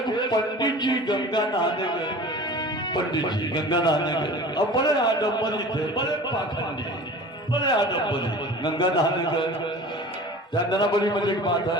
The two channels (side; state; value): both; normal; correlation 0.39